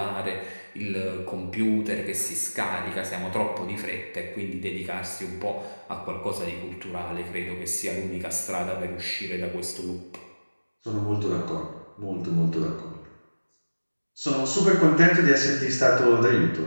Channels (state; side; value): inverted; both; correlation -1.00